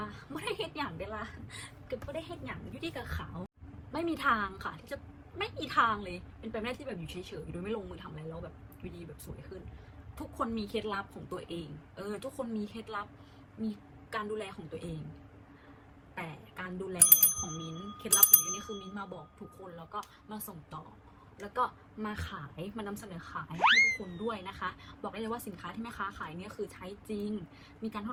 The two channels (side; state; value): both; identical; correlation 1.00